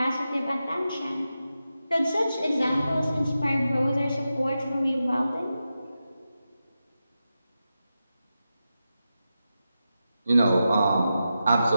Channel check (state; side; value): inverted; both; correlation -0.90